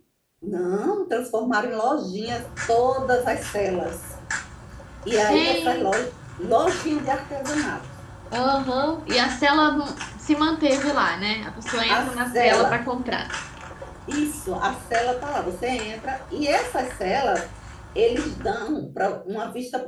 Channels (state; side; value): identical; both; correlation 1.00